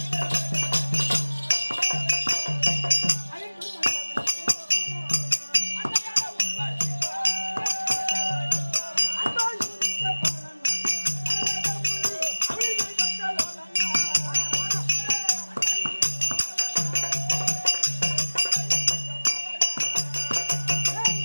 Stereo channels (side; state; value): both; inverted; correlation -1.00